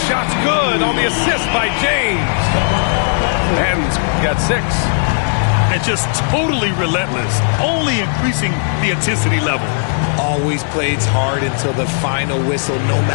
shot's good on the assist by James. And got 6. And just totally relentless, only increasing the intensity level. Always plays hard until the final whistle, no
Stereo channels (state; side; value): silent; right; digital silence